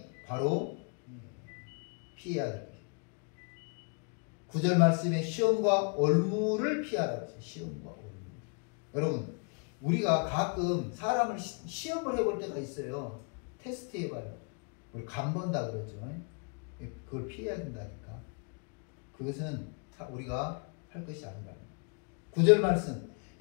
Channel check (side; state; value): right; quieter; 37.5 dB